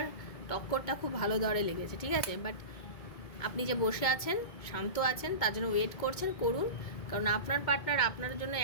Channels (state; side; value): late; right; 2.2 ms